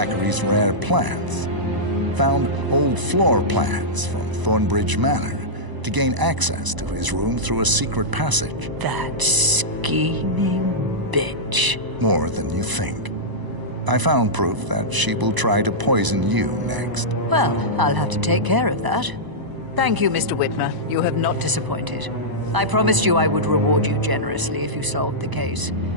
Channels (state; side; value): late; left; 1.0 ms